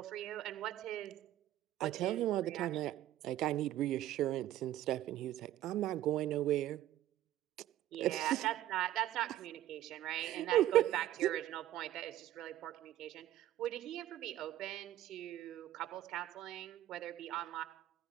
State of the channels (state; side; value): quieter; left; 13.3 dB